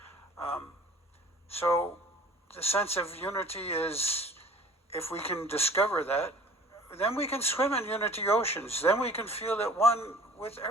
So the sense of unity is, if we can discover that, then we can swim in unity oceans. Then we can feel at one with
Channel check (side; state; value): both; normal; correlation 0.48